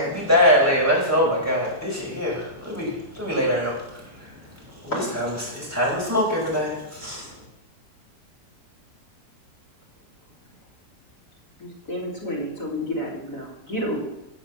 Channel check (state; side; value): normal; both; correlation -0.18